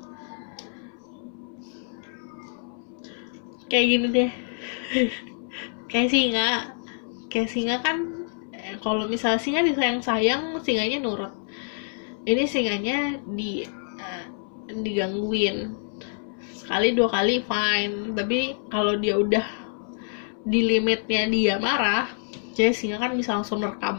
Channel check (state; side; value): silent; right; 61 dB below the other